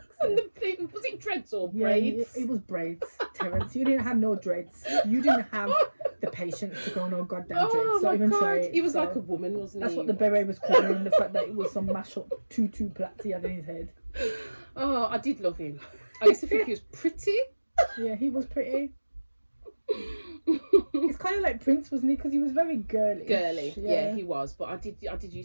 And sake. the thing, was it dreads or Yeah, braids? it was braids, Terence. You didn't have no dreads. You didn't have the patience to go no goddamn dreads. Oh Don't my even god, try it. he was So like a woman, wasn't that's he? what the beret was covering, the fact that it was some mash up tutu plaits he had in his head. Oh, I did love him. I used to think he was pretty. Yeah, he was pretty. It's kind of like Prince, wasn't he? Because he was very girly. Girly, yeah, he was. But I did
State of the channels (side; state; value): both; inverted; correlation -1.00